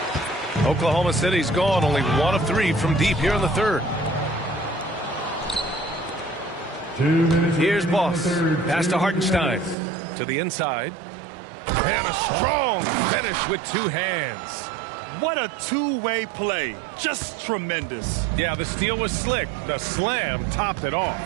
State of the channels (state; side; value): drops out; left; at 9.8 s